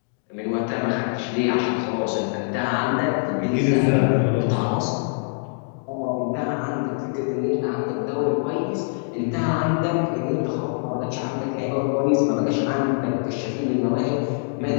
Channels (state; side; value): silent; right; digital silence